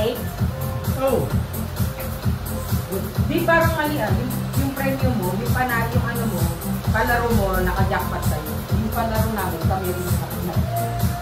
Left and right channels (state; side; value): identical; both; correlation 1.00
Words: oh, Di parang mali yung premium mo, yung panalo yung ano mo, palaro mo, naka-jackpot sa'yo. Yung palaro namin, kami rin sa kapila.